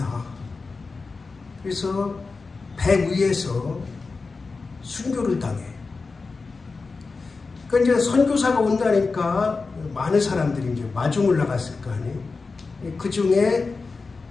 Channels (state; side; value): quieter; right; 4.2 dB